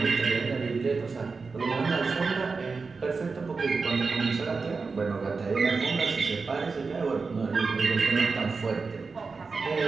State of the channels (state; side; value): quieter; left; 4.5 dB